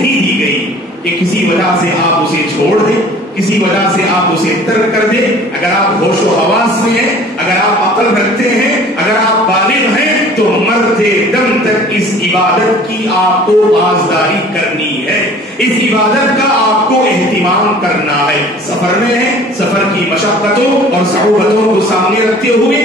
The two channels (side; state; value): both; normal; correlation 0.49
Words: دی گئی کہ کسی وجہ سے آپ اسے چھوڑ دیں, کسی وجہ سے آپ اسے ترک کر دیں. اگر آپ ہوش و حواس میں ہیں, اگر آپ عقل رکھتے ہیں, اگر آپ بالغ ہیں تو مرتے دم تک اس عبادت کی آپ کو پاسداری کرنی ہے, اس عبادت کا آپ کو اہتمام کرنا ہے. سفر میں ہے, سفر کی مشقتوں اور صعوبتوں کو سامنے رکھتے